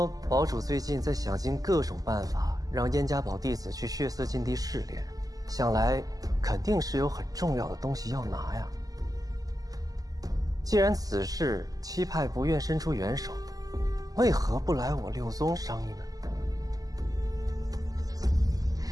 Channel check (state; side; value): late; left; 0.17 ms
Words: 堡主最近在想尽各种办法，让燕家堡弟子去血色禁地试炼，想来肯定是有很重要的东西要拿呀。既然此事七派不愿伸出援手，为何不来我六宗商议呢？